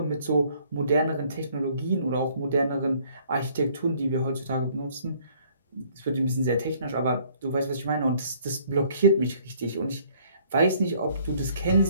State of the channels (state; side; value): inverted; both; correlation -0.60